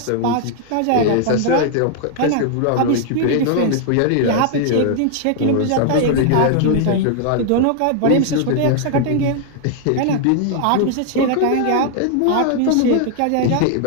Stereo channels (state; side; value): different; both; correlation 0.00